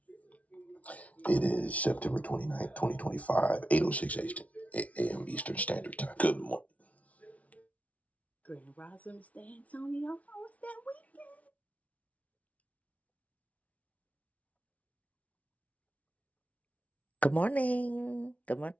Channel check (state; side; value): late; right; 0.068 ms